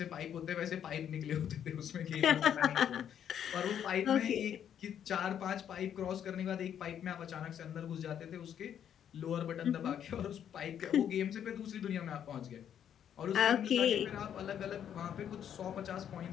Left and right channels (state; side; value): quieter; right; 9.3 dB